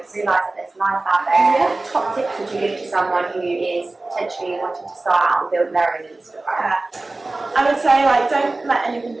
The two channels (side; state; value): left; quieter; 3.1 dB